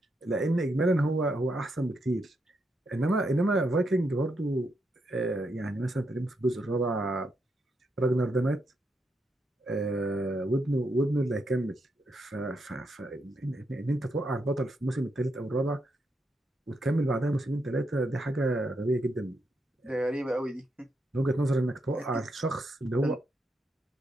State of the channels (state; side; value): normal; both; correlation 0.81